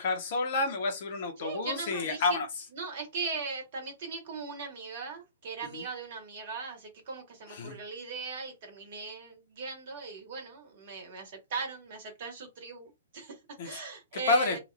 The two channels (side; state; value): both; inverted; correlation -0.45